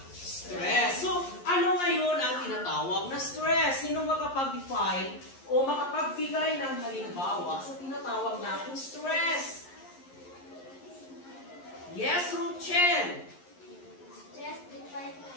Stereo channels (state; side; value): late; right; 11 ms